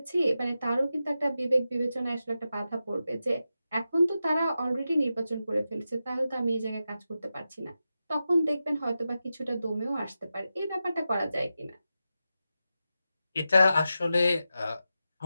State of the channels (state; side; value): inverted; both; correlation -0.91